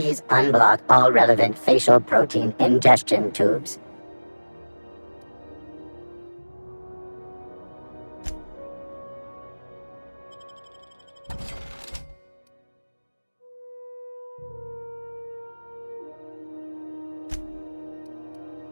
unblock all relevant facial protein ingestion tubes.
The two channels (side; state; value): both; inverted; correlation -1.00